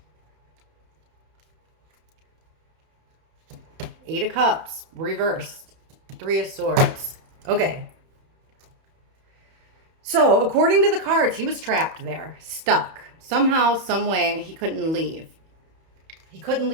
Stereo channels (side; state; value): left; late; 31 ms